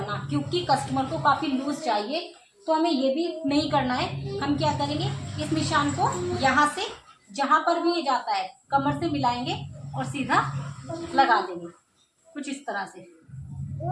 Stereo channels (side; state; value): both; identical; correlation 1.00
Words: क्योंकि कस्टमर को काफ़ी लूज चाहिए, तो हमें ये भी नहीं करना है। हम क्या करेंगे, इस निशान को यहाँ से जहाँ पर भी ये जाता है कमर से मिलाएंगे और सीधा लगा देंगे, कुछ इस तरह से।